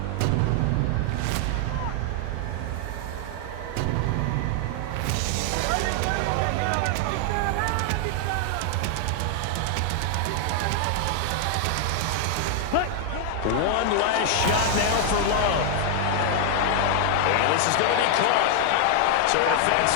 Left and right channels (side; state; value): both; different; correlation 0.00